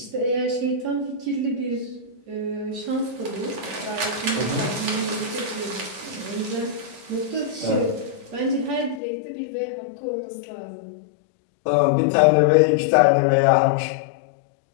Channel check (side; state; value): right; drops out; at 9.0 s